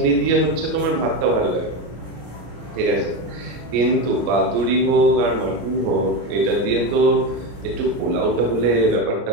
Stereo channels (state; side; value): late; left; 34 ms